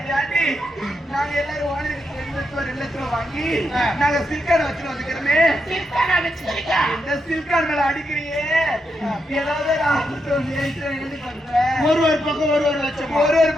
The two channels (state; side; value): normal; both; correlation 0.83